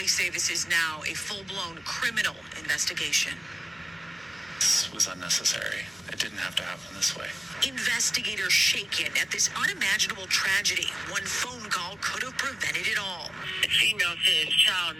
say this is now a full-blown criminal investigation. This was unnecessary. It didn't have to happen this way. Investigators shaken at this unimaginable tragedy. One phone call could have prevented it all. The female says child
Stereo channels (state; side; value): normal; both; correlation 0.95